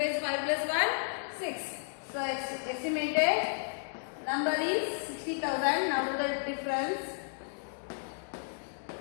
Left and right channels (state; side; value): silent; right; digital silence